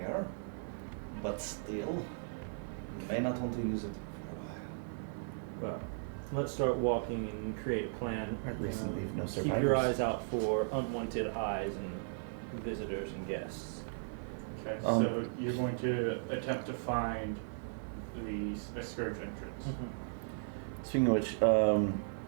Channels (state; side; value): silent; left; 53 dB below the other